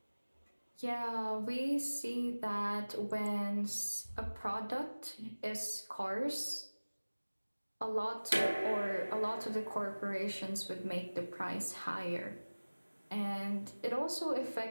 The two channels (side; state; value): both; inverted; correlation -1.00